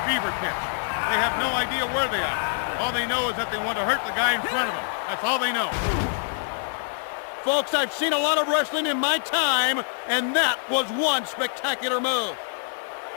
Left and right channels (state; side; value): silent; right; digital silence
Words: fever pitch. They have no idea where they are. All they know is that they want to hurt the guy in front of them. That's all they know. Folks, I've seen a lot of wrestling in my time, and that was one spectacular move.